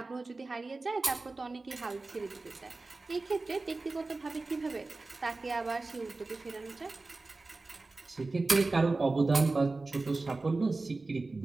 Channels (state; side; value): quieter; left; 3.4 dB